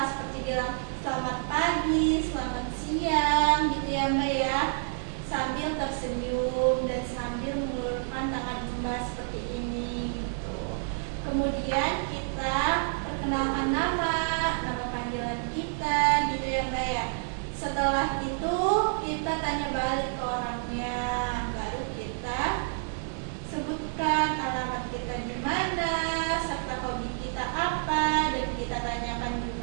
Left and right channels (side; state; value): left; silent; 59 dB below the other